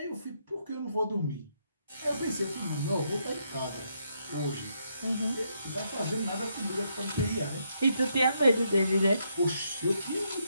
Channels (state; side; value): inverted; both; correlation -0.77